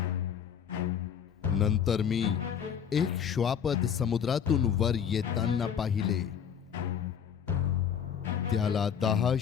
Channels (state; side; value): quieter; right; 8.0 dB